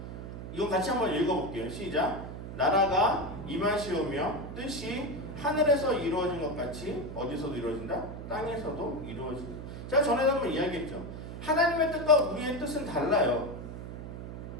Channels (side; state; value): right; noise; hum, 9 dB below the sound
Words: 이거 같이 한번 읽어볼게요. 시작. 나라가 임하시오며 뜻이 하늘에서 이루어진 것 같이 어디서도 이루어진다? 땅에서도 이루어진다. 제가 전에도 한번 이야기했죠. 하나님의 뜻과 우리의 뜻은 달라요.